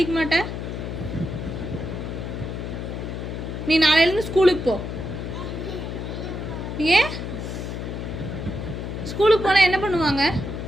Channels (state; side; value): noise; left; hum, 5 dB below the sound